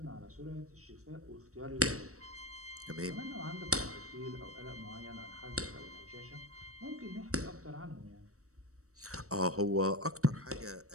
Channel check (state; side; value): late; left; 0.65 ms